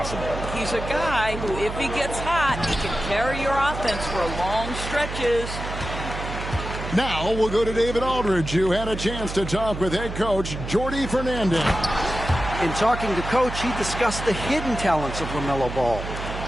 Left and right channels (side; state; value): right; noise; hum, 7 dB below the sound